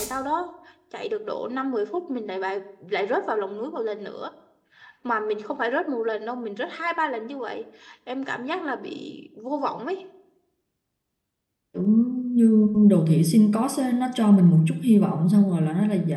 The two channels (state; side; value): identical; both; correlation 1.00